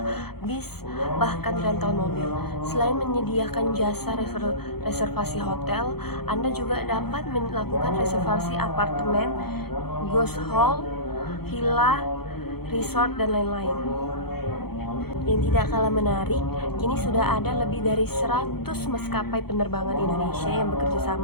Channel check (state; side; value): late; right; 0.96 ms